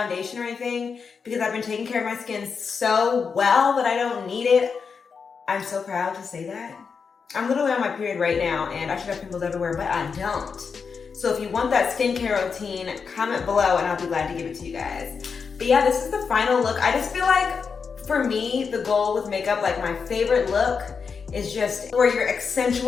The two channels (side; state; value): right; quieter; 5.7 dB